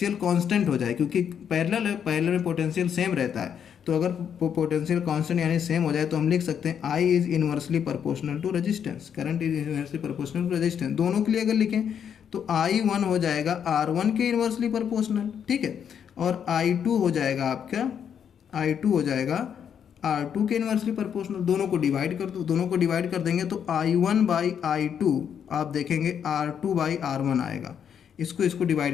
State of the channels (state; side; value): quieter; right; 8.1 dB